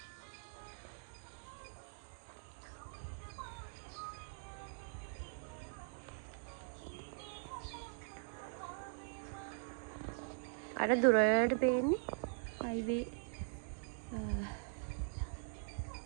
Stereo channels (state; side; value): silent; left; digital silence